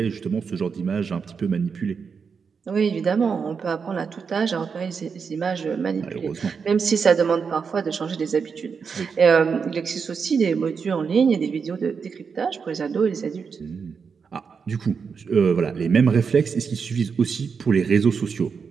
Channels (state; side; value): quieter; left; 5.8 dB